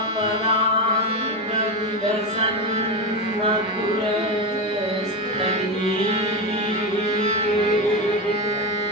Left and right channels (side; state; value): both; normal; correlation 0.15